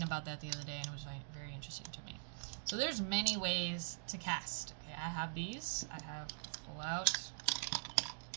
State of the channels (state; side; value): silent; left; digital silence